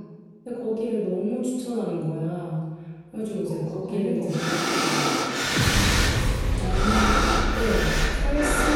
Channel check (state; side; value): identical; both; correlation 1.00